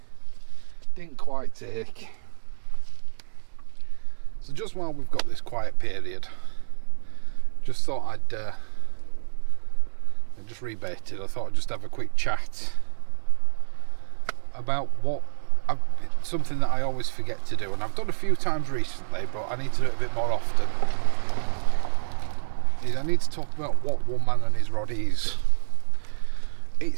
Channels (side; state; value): left; silent; digital silence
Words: quite take. So just while we've got this quiet period, just thought I just rebaited. I thought I'd just have a quick chat about something that I always forget to do, and I've done a few times recently, but I need to do it a bit more often. Is I need to talk about what one man and his rod is.